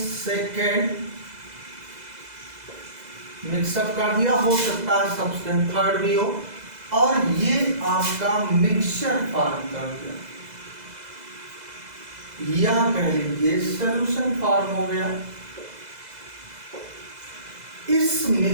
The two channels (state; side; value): late; left; 2.0 ms